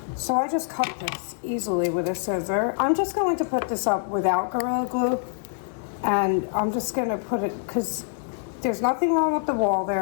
So I just cut this easily with a scissor. I'm just going to put this up without Gorilla Glue, and I'm just gonna put it, because there's nothing wrong with the wall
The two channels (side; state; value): right; silent; 61 dB below the other